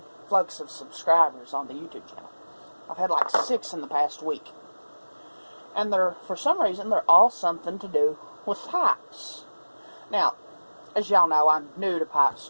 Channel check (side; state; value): both; inverted; correlation -1.00